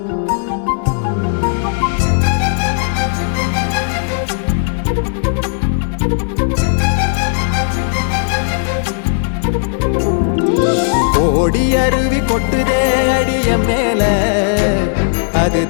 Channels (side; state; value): right; silent; digital silence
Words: ஓடி அருவி கொட்டுதே அடிய மேல அது